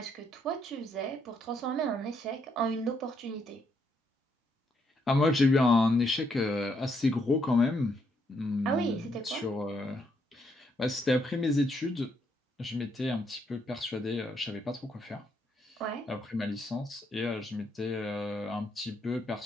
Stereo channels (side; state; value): both; normal; correlation 0.75